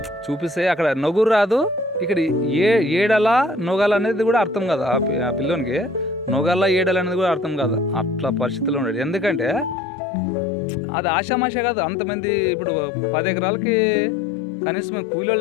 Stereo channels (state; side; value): drops out; right; at 9.8 s